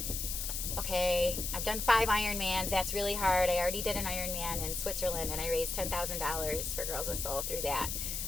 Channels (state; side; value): noise; left; hiss, 3 dB below the sound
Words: Okay, I've done 5 Ironmans. That's really hard. I already did an Ironman in Switzerland, and I raised $10,000 for Girls with Soul through that.